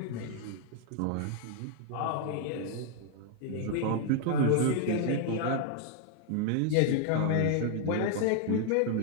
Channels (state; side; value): different; both; correlation 0.00